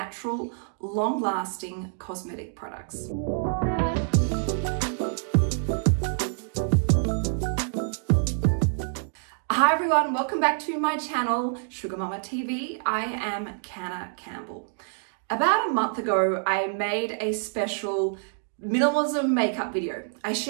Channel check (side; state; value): left; silent; digital silence